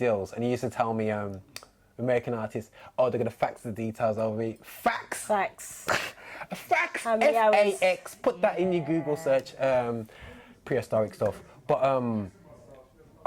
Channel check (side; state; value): both; identical; correlation 1.00